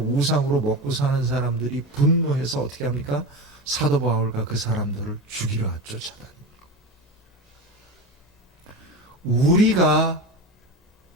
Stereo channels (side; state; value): both; normal; correlation 0.25